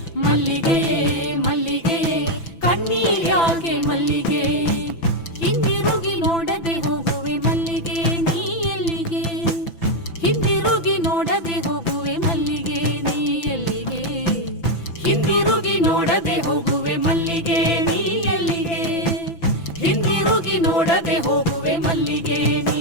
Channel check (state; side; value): late; right; 6.0 ms